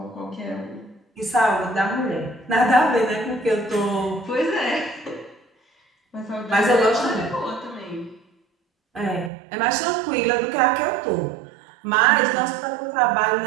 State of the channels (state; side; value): drops out; left; at 9.3 s